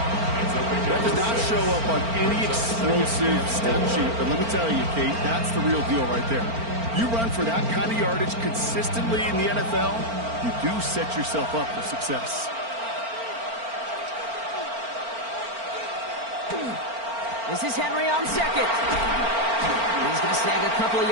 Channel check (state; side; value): late; left; 4.4 ms